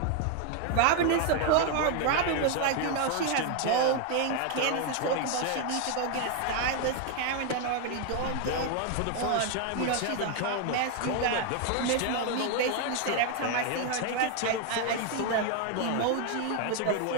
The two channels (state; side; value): different; both; correlation 0.01